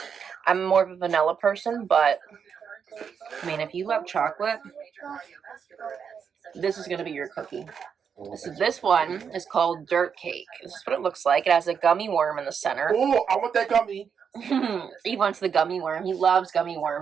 I'm more of a vanilla person, but I mean, if you love chocolate, this is going to be your cookie. So this one is called Dirt Cake. This is what it looks like. It has a gummy worm in the center. Oh, I want that gummy. He wants the gummy worm. He loves gummy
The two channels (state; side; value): quieter; left; 6.9 dB